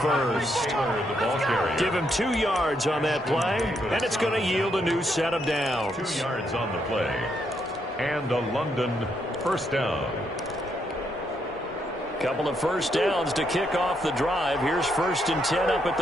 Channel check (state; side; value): normal; both; correlation 0.77